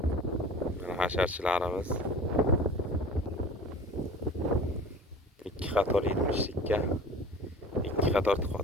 Mana hasharchilarimiz 2 qator 70likka 2 qator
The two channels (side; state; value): both; normal; correlation 0.41